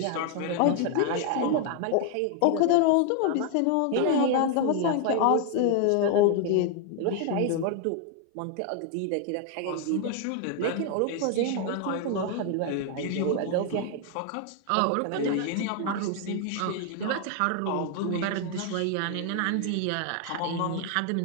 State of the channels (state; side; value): different; both; correlation 0.00